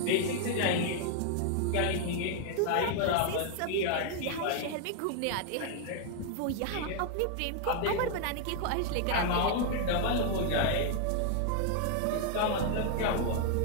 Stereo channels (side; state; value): both; different; correlation 0.00